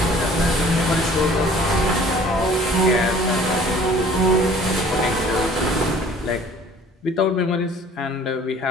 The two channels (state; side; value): normal; both; correlation 0.52